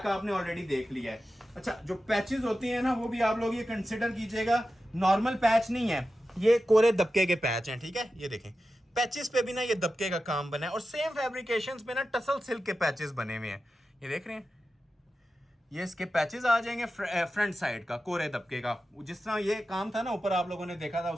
आपने ऑलरेडी देख लिया है। अच्छा, जो पैचेस होते हैं ना, वो भी आप लोग ये कंसिडर कीजिएगा, नॉर्मल पैच नहीं है, ये कोरे दबके के पैच हैं, ठीक है। ये देखें, पैचेस पे भी ना ये दबके का काम बना है, और सेम फैब्रिकेशंस पे ना टसल सिल्क के पैचेस बने हुए हैं। ये देख रहे हैं, ये इसके पैचेस आ जाएंगे फ्रंट साइड का, कोरे दबके का। जिस तरह ये काम था ना ऊपर आप लोगों ने देखा था,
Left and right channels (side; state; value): both; normal; correlation 0.92